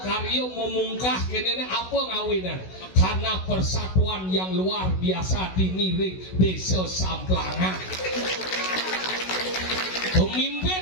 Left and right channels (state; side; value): late; right; 16 ms